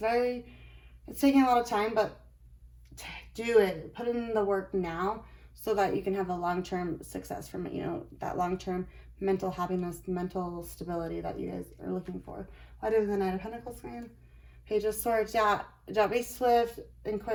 taking a lot of time, but do it. Put in the work now, so that you can have a long-term success from it, you know, that long-term mental happiness, mental stability that you guys are looking for. Why do the Knight of Pentacles come in? Page of Swords. Yeah, don't be swift and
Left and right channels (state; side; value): identical; both; correlation 1.00